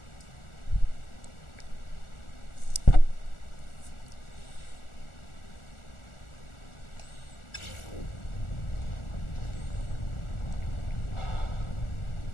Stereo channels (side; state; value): right; late; 1.4 ms